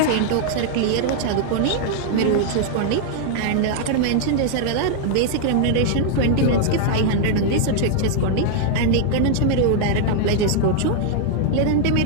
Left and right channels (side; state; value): both; different; correlation -0.01